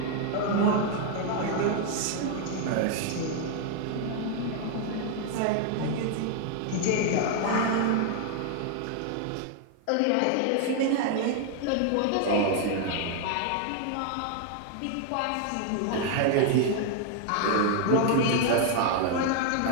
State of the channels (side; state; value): both; different; correlation 0.00